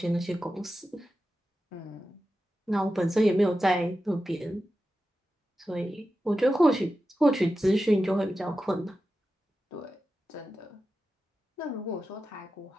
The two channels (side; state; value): both; normal; correlation 0.92